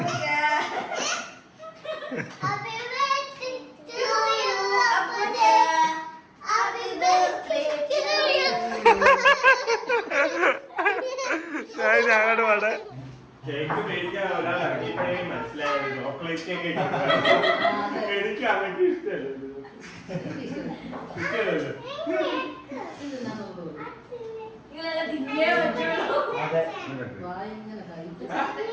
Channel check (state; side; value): identical; both; correlation 1.00